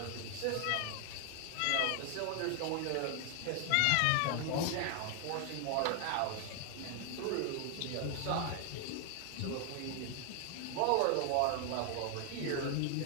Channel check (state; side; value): different; both; correlation 0.00